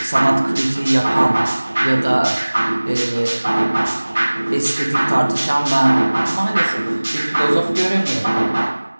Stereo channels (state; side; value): inverted; both; correlation -1.00